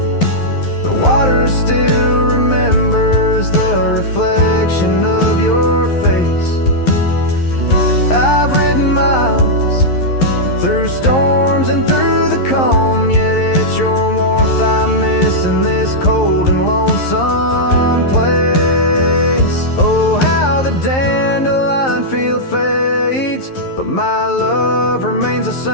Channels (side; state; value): right; late; 11 ms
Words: the water still remembers the reflection of your face. I've ridden miles through storms and through the calm, yet it's your warmth I miss in this cold and lonesome place. Oh, how the dandelion field fades, but my love remains the